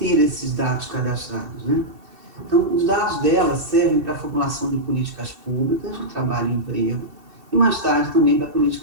esses dados cadastrados, né? Então, os dados dela servem para a formulação de políticas públicas de trabalho e emprego e, mais tarde, também para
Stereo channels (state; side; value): late; left; 2.7 ms